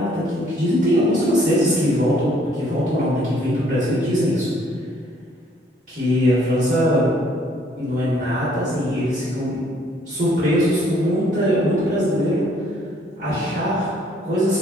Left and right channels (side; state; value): both; normal; correlation 0.63